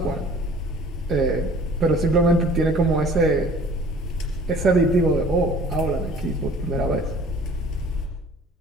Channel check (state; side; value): normal; both; correlation 0.50